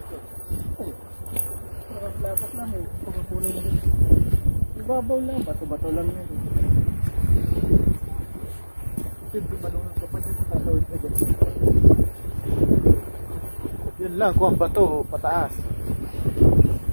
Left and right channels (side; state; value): both; inverted; correlation -1.00